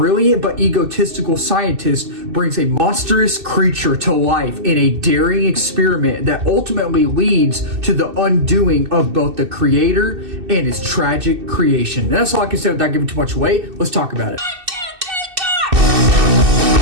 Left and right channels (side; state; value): left; late; 2.6 ms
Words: but egotistical scientist brings a monstrous creature to life in a daring experiment that ultimately leads to the undoing of both the creator and his tragic creation. And that's all I can say without giving too much away. Let's talk about it.